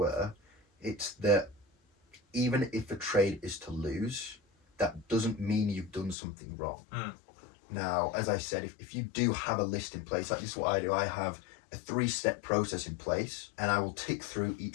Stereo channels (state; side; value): drops out; right; at 6.2 s